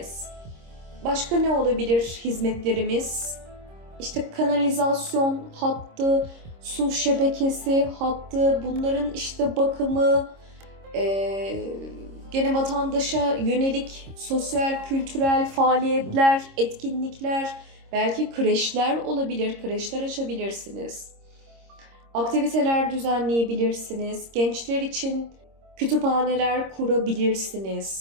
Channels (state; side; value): late; left; 26 ms